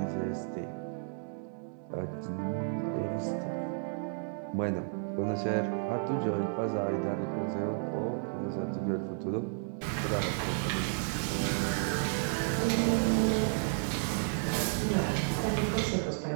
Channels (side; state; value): left; silent; digital silence